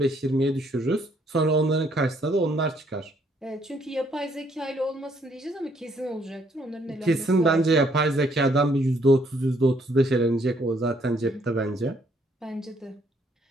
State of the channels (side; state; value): both; normal; correlation 0.68